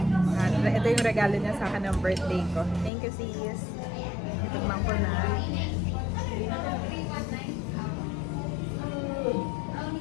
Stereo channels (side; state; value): right; drops out; at 2.9 s